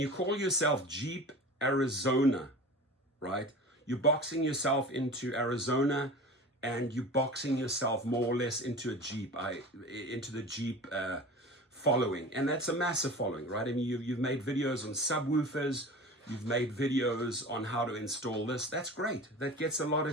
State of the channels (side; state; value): both; normal; correlation 0.36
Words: call yourself Jeep Arizona, right? You're boxing yourself into Arizona, and you're boxing yourself more or less into a Jeep, into the Jeep following. And that's a massive following, right? I mean, you've made videos on subwoofers, you've made videos on how to install this. That's great. That gets a lot